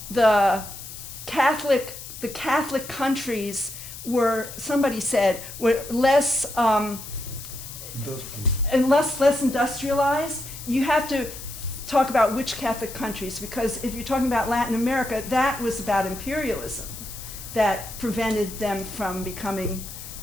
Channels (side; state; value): left; noise; hiss, 12 dB below the sound